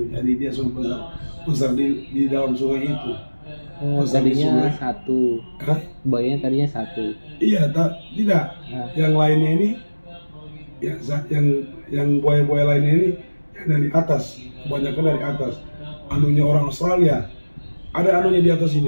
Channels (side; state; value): both; inverted; correlation -1.00